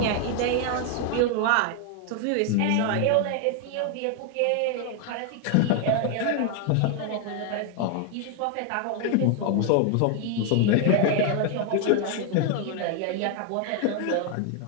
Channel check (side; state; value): both; different; correlation 0.00